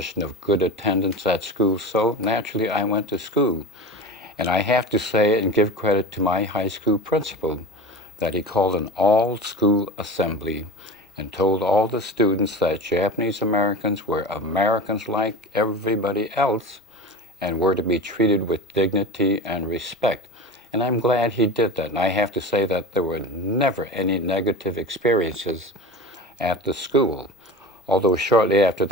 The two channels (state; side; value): normal; both; correlation 0.30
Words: of good attendance at school, so naturally I went to school. And I have to say and give credit to my high school principal that he called an all-school assembly and told all the students that Japanese Americans were Americans like everybody else and were to be treated with dignity and respect. And I'm glad he did that. And I have to say that there were never any negative experiences at the school. Although shortly after